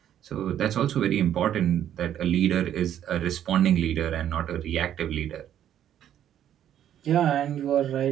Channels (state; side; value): quieter; left; 10.6 dB